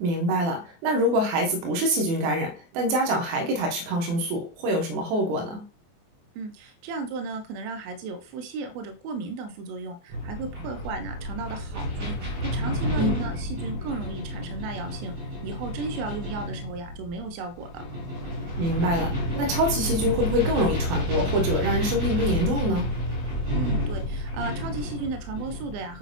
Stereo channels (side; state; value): left; late; 24 ms